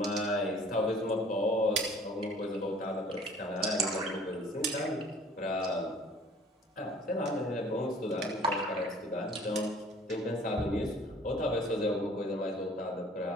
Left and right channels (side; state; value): both; normal; correlation 0.52